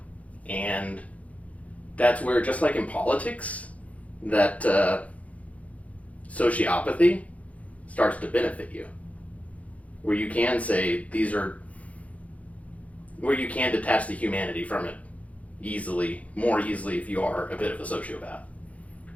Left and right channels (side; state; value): right; late; 0.067 ms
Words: And that's where, just like in politics, that sociopathy starts to benefit you. Where you can say where you can detach the humanity from it more easily if you are a bit of a sociopath.